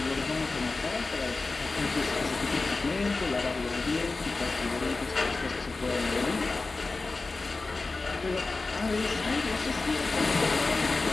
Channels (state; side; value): quieter; right; 3.7 dB